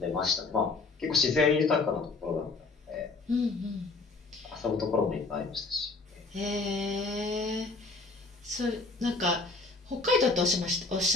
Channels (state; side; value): quieter; right; 3.7 dB